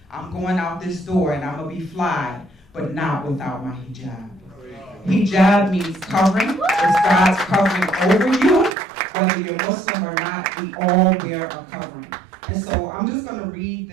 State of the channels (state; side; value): drops out; left; at 8.8 s